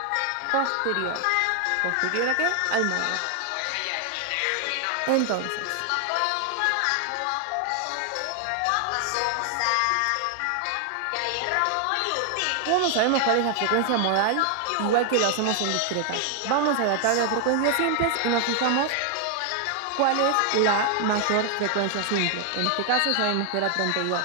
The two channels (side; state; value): both; different; correlation 0.00